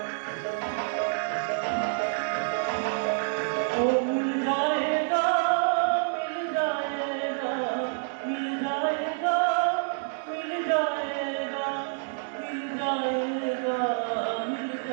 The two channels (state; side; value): silent; left; digital silence